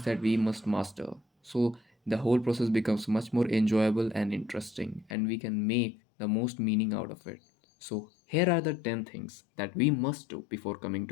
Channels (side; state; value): right; drops out; at 5.2 s